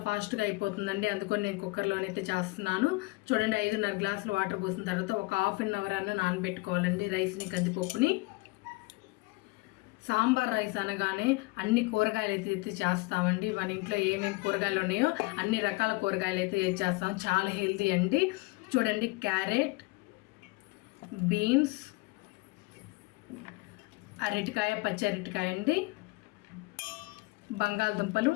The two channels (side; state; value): right; quieter; 24.4 dB